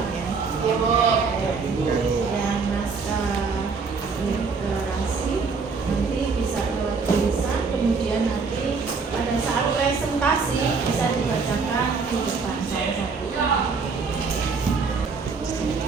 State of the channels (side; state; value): left; quieter; 4.9 dB